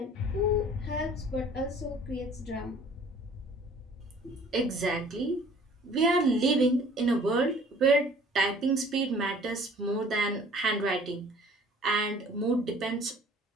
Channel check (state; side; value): normal; both; correlation 0.52